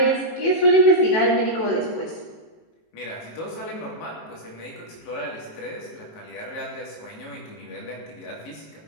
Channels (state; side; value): late; right; 19 ms